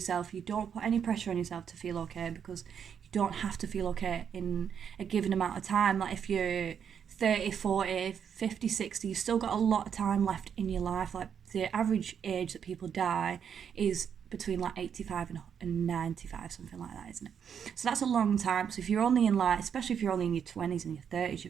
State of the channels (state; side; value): quieter; left; 7.8 dB